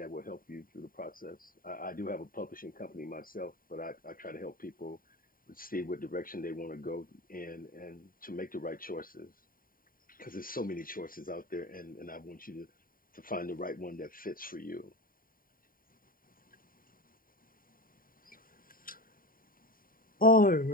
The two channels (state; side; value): late; right; 0.41 ms